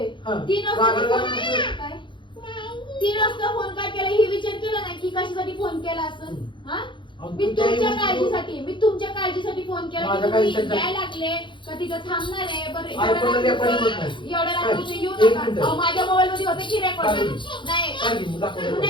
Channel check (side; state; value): right; late; 0.23 ms